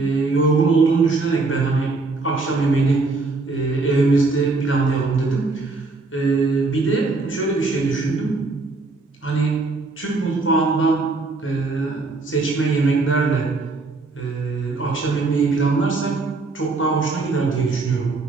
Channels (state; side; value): quieter; left; 3.7 dB